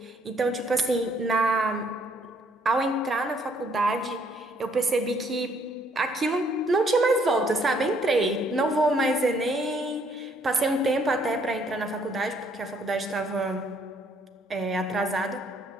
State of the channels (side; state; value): both; normal; correlation 0.66